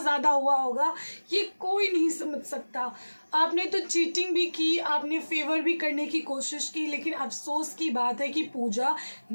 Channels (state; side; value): inverted; both; correlation -1.00